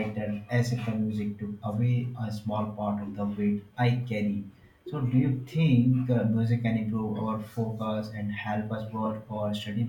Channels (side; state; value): both; identical; correlation 1.00